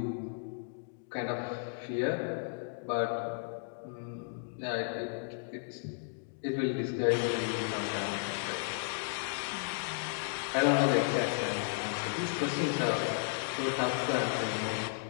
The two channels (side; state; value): right; silent; digital silence